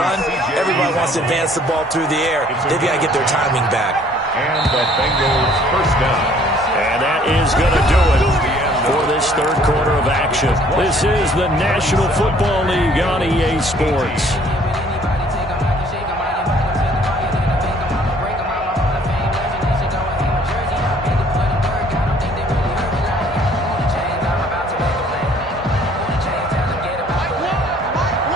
Everybody wants to advance the ball through the air. They've got to get their timing back. And the Bengals first down. And that is going to do it for this third quarter of action. This is the National Football League on EA Sports.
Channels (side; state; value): both; normal; correlation 0.58